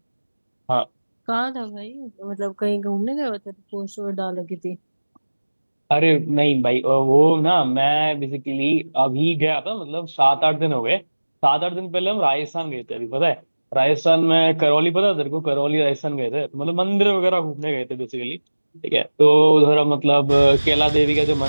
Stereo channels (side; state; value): both; inverted; correlation -1.00